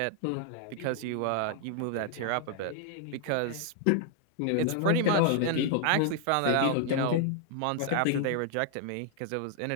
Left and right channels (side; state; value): both; different; correlation 0.00